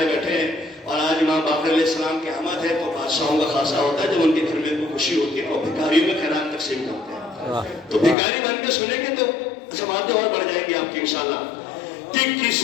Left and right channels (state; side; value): drops out; right; at 8.2 s